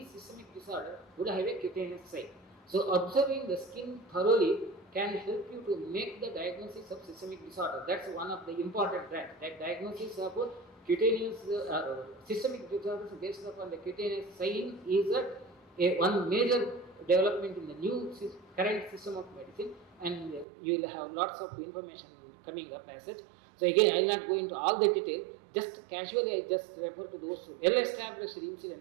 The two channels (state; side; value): drops out; left; at 20.5 s